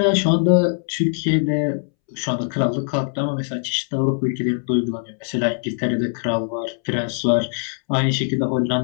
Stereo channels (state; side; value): silent; right; 65 dB below the other